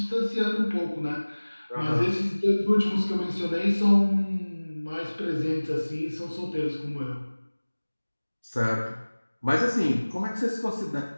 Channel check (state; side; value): inverted; both; correlation -1.00